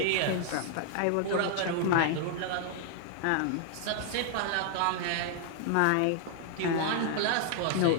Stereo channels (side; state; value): both; different; correlation -0.01